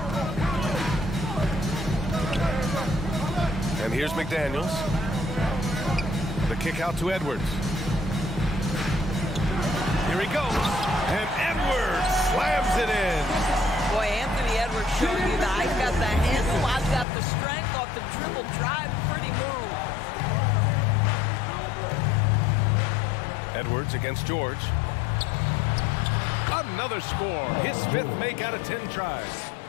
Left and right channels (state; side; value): drops out; right; at 17.1 s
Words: And here's McDaniels. The kick out to Edwards. Here he goes. And Edwards slams it in. Boy, Anthony Edwards showing you that I've got the handle, I've got the strength off the dribble drive. Pretty move. Edwards against George. Another score. His 5th make out of 10 tries.